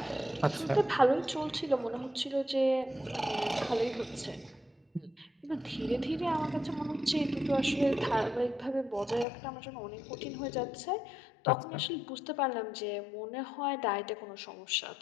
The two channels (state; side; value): drops out; right; at 9.2 s